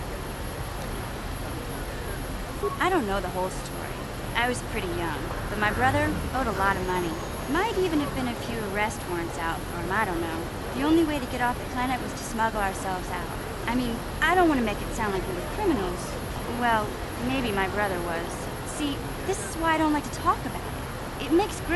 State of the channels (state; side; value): identical; both; correlation 1.00